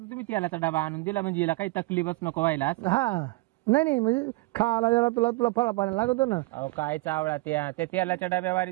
तुम्ही तेलाचा डबा आणून दिला म्हणजे हिला काही तकलीफच नको व्हायला. हा नाही म्हणजे खायला जरा तुला तुला फळा पाणी लागतो ना. अहो काय चावळा त्या तेलाच्या डब्यावारी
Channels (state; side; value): quieter; left; 22.6 dB